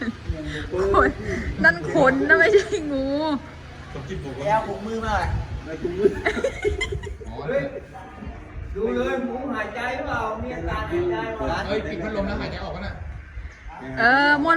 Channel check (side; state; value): both; identical; correlation 1.00